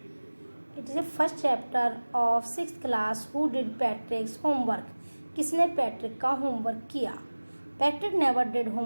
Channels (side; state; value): both; inverted; correlation -1.00